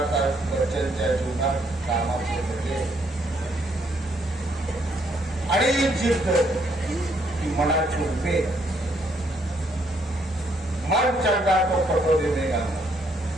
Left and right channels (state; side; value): normal; both; correlation 0.70